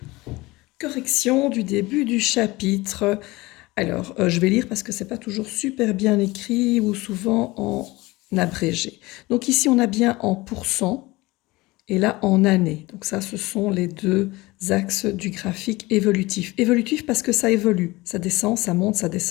Correction du début du chapitre. Alors, je vais lire parce que c'est pas toujours super bien écrit ou souvent en abrégé. Donc ici, on a bien en pourcent et là en année. Donc ça, ce sont les deux axes du graphique évolutif. Évolutif parce que ça évolue. Ça descend, ça monte, ça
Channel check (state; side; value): quieter; right; 21.1 dB